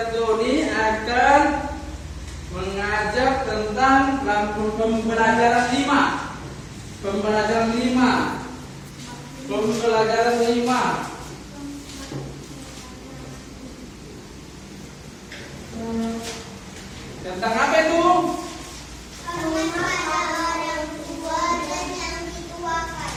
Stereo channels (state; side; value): identical; both; correlation 1.00